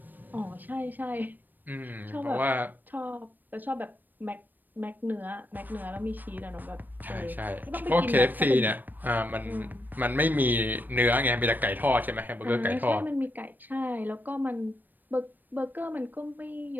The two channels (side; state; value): left; late; 0.090 ms